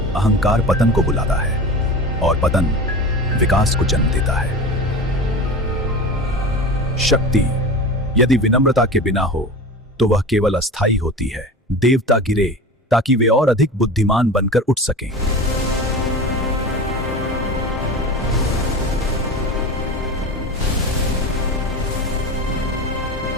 अहंकार पतन को बुलाता है और पतन विकास को जन्म देता है। शक्ति यदि विनम्रता के बिना हो तो वह केवल अस्थायी होती है। देवता गिरे ताकि वे और अधिक बुद्धिमान बनकर उठ सकें।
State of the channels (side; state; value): both; normal; correlation 0.31